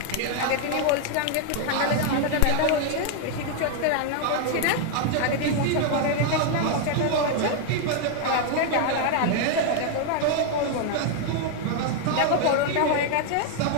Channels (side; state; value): both; different; correlation 0.00